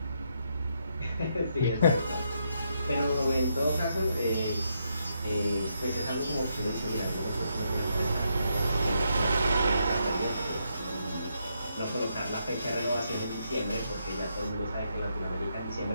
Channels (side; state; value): both; inverted; correlation -0.79